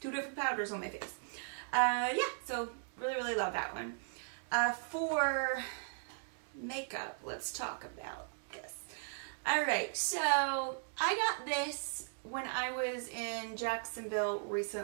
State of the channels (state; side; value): silent; left; digital silence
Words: 2 different powders on my face. Yeah, so really, really love that one. For makeup, let's talk about this. Alright, so I got this when I was in Jacksonville